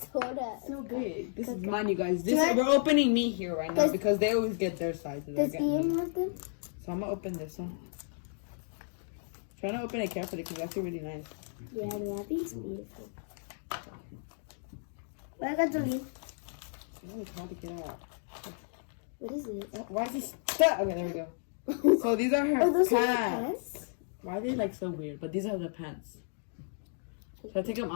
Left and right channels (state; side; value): silent; right; digital silence